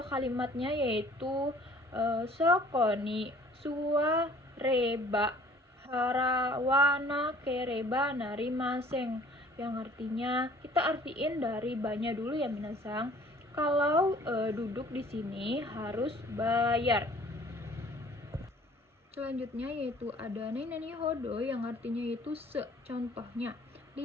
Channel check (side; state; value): both; normal; correlation 0.53